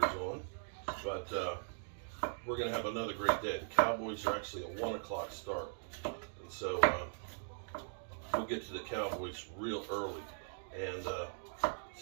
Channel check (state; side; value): silent; left; digital silence